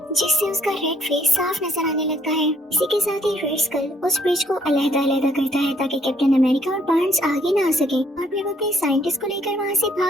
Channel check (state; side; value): normal; both; correlation 0.65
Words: जिससे उसका रेड फेस साफ नजर आने लगता है। इसी के साथ ही रेड स्कल उस ब्रिज को अलग-अलग करता है ताकि कैप्टन अमेरिका और बार्न्स आगे ना आ सके, और फिर वो अपने साइंटिस्ट को लेकर वहाँ से